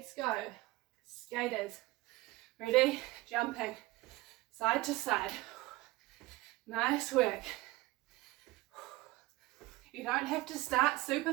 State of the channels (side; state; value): left; quieter; 19.7 dB